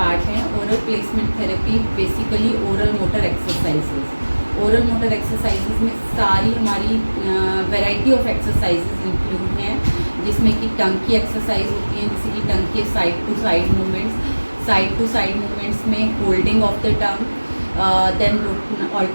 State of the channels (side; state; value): both; inverted; correlation -1.00